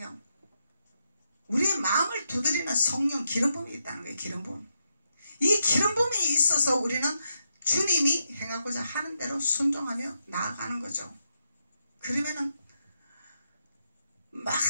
우리의 마음을 두드리는 성령 기름 부음이 있다는 거예요. 기름 부음. 이 기름 부음이 있어서 우리는 주님이 행하고자 하는 대로 순종하며 나아가는 거죠. 그러면은 막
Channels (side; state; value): both; inverted; correlation -0.83